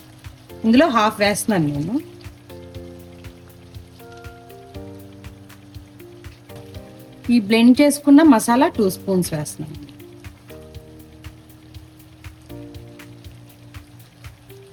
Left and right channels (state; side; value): identical; both; correlation 1.00